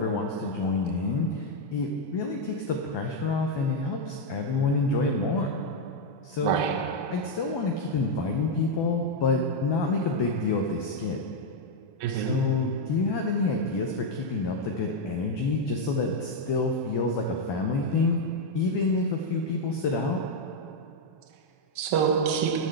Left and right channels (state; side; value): late; right; 1.2 ms